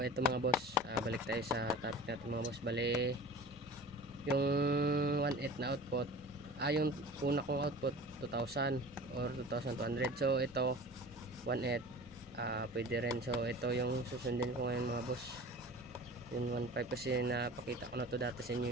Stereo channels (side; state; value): both; normal; correlation 0.39